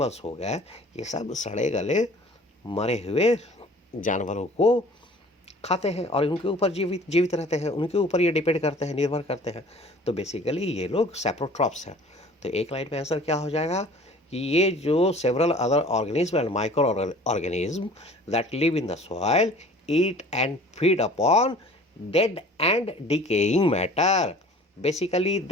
हो गए, ये सब सड़े गले मरे हुए जानवरों को खाते हैं और उनके ऊपर जीवित रहते हैं, उनके ऊपर ये डिपेंड करते हैं, निर्भर करते हैं। तो बेसिकली ये लोग सैप्रोट्रॉप्स हैं। तो एक लाइन में आंसर क्या हो जाएगा कि ये जो several other organism and microorganism that live in the soil eat and feed upon dead and decaying matter, basically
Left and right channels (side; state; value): both; normal; correlation 0.48